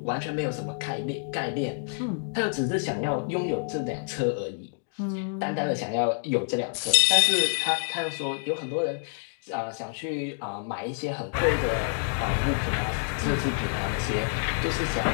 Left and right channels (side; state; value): right; silent; digital silence